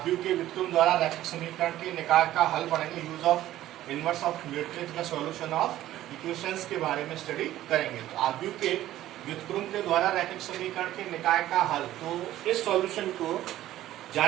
के व्युत्क्रम द्वारा रैखिक समीकरण के निकाय का हल पढ़ेंगे। Use of inverse of matrix का सॉल्यूशन ऑफ इक्वेशंस के बारे में स्टडी करेंगे। तो आव्यूह के व्युत्क्रम के द्वारा रैखिक समीकरण के निकाय का हल, तो इस सॉल्यूशन को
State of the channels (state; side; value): quieter; left; 13.9 dB